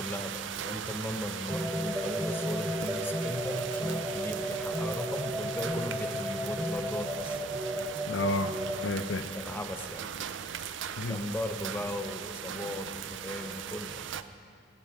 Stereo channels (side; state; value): both; normal; correlation 0.59